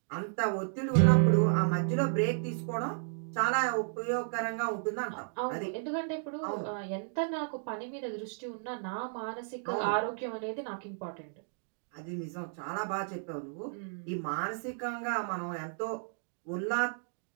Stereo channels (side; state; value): left; silent; digital silence